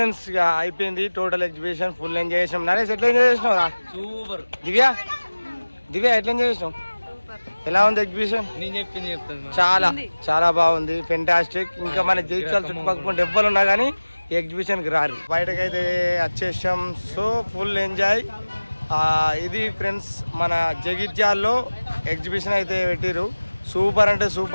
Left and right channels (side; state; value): both; inverted; correlation -1.00